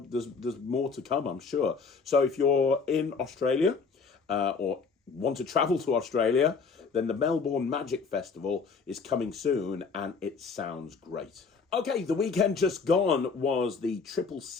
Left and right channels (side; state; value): right; quieter; 5.1 dB